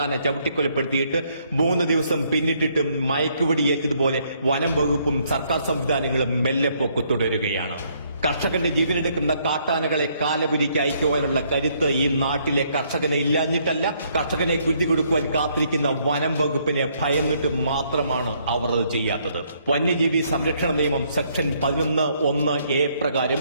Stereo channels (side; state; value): both; inverted; correlation -0.69